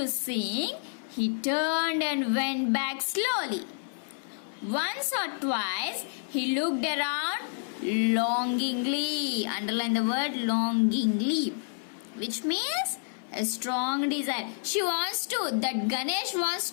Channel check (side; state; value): right; silent; 59 dB below the other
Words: sing, he turned and went back slowly. Once or twice, he looked around longingly. Underline the word longingly, which means a strong desire. That Ganesh wants